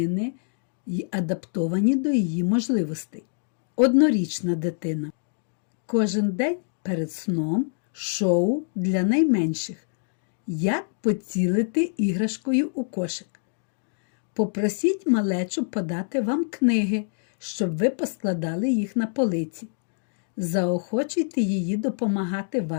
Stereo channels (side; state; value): right; silent; digital silence